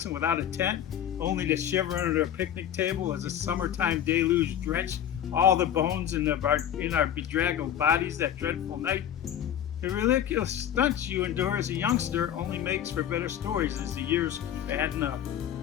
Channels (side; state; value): right; quieter; 10.2 dB